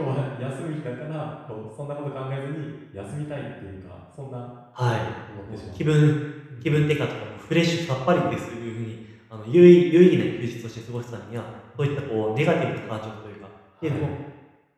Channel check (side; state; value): both; identical; correlation 1.00